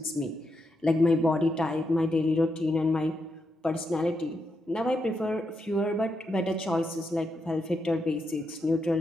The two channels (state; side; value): normal; both; correlation 0.83